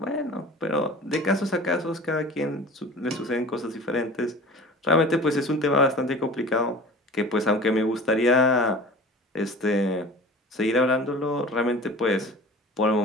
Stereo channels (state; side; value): normal; both; correlation 0.40